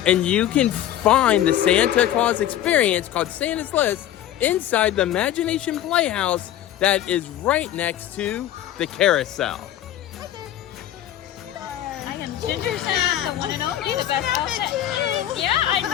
And you can find the Santa Claus experience called Santa's List inside the Imagination Playhouse that is right next to the carousel. I am Ginger Santa, the one and only, the best outfit. Yeah, I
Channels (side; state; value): right; quieter; 12.1 dB